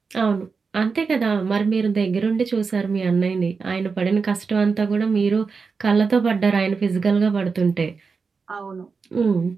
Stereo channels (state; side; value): quieter; left; 5.0 dB